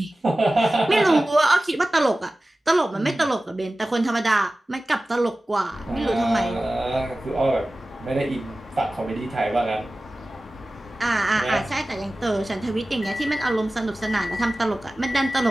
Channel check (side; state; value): both; normal; correlation 0.96